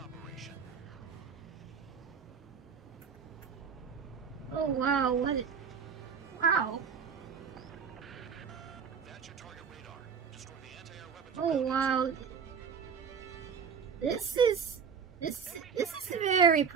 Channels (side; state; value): left; quieter; 6.5 dB